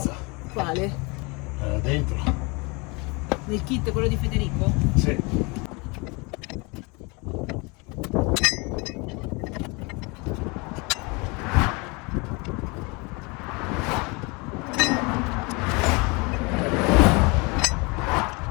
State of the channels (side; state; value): right; quieter; 28.4 dB